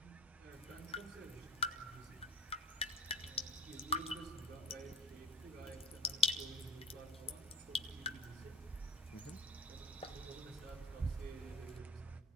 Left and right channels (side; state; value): both; normal; correlation 0.37